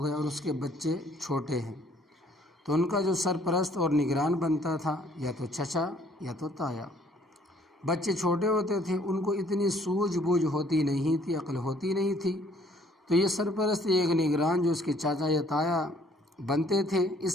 گیا اور اس کے بچے چھوٹے ہیں تو ان کا جو سرپرست اور نگران بنتا تھا یا تو چچا یا تو تایا۔ بچے چھوٹے ہوتے تھے، ان کو اتنی سوجھ بوجھ ہوتی نہیں تھی، عقل ہوتی نہیں تھی، تو یہ سرپرست ایک نگران جو اس کے چاچا یا تایا بنتے تھے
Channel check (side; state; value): both; normal; correlation 0.60